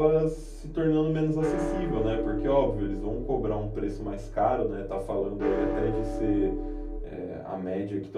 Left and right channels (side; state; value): both; identical; correlation 1.00